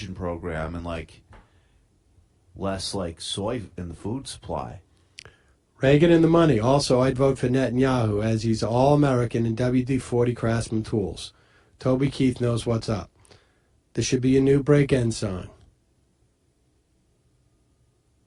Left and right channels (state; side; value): identical; both; correlation 1.00